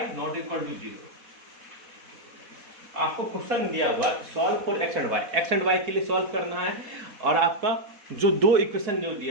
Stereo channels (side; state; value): left; late; 4.1 ms